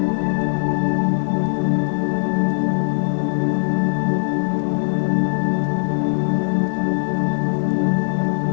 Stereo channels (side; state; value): right; silent; digital silence